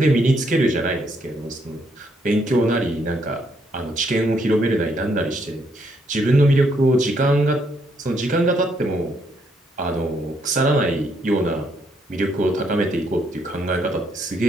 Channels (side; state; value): both; normal; correlation 0.73